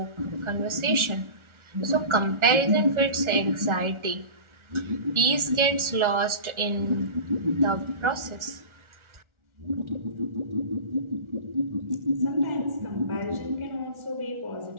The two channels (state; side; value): late; left; 1.4 ms